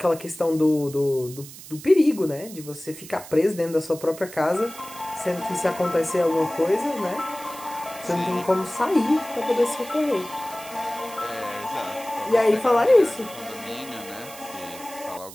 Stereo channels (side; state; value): right; noise; hiss, 16 dB below the sound